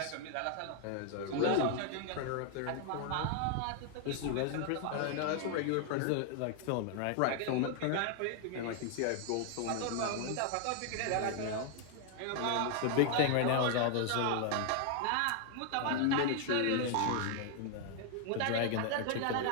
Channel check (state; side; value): different; both; correlation 0.00